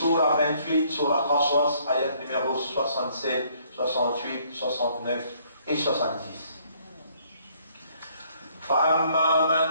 28, Surah Qasas, ayat numéro 67, 68, 69 et 70. فَأَمَّا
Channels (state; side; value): inverted; both; correlation -0.65